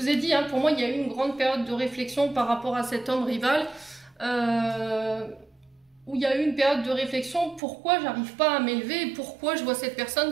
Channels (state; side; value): drops out; left; at 7.6 s